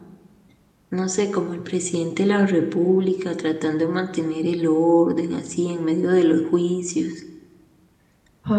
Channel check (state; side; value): identical; both; correlation 1.00